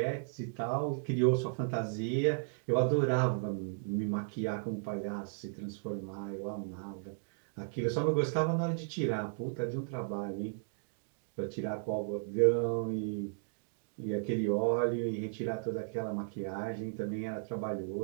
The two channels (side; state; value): left; silent; digital silence